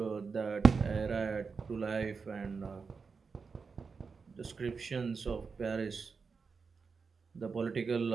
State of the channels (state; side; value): quieter; left; 5.1 dB